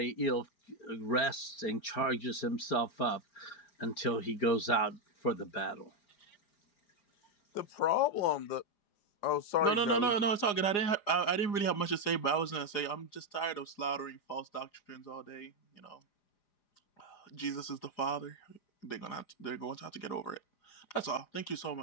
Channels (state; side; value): late; right; 4.9 ms